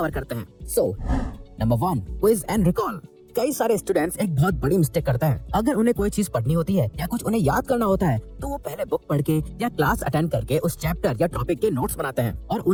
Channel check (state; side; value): identical; both; correlation 1.00